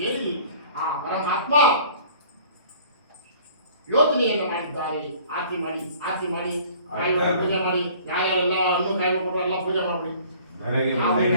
ಹೇಳಿ ಆ ಪರಮಾತ್ಮ ಯೋಚನೆಯನ್ನು ಮಾಡಿದ್ದಾರೆ. ಆರತಿ ಮಾಡಿ ಪೂಜೆ ಮಾಡಿ ಯಾರ್ಯಾರೆಲ್ಲ ಹಣ್ಣು ಕಾಯಿ ಕೊಟ್ಟರು ಎಲ್ಲ ಪೂಜೆ ಮಾಡಿ ಧರೆಗೆ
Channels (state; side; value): inverted; both; correlation -0.51